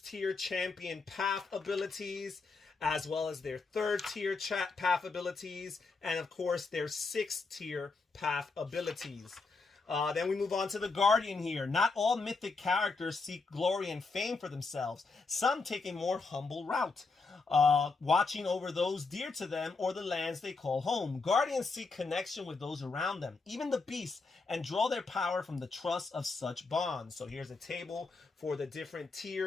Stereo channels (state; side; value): quieter; right; 4.1 dB